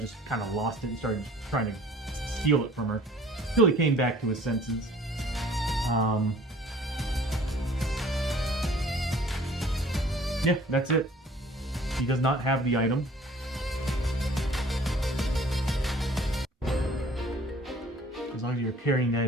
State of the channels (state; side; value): normal; both; correlation 0.52